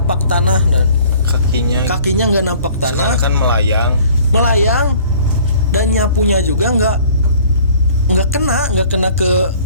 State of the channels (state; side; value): inverted; both; correlation -0.52